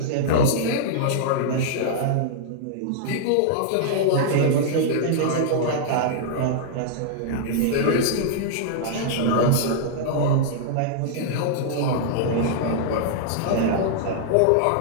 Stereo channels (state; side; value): different; both; correlation -0.01